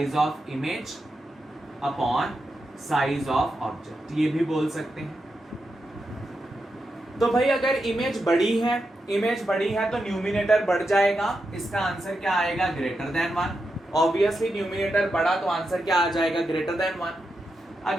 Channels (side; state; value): both; normal; correlation 0.87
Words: of image upon size of object, ये भी बोल सकते हैं। तो भाई अगर इमेज बड़ी है तो न्यूमिनेटर बढ़ जाएगा, इसका आंसर क्या आएगा, ग्रेटर देन 1। ऑब्वियसली न्यूमिनेटर बढ़ा तो आंसर क्या आ जाएगा, ग्रेटर देन 1।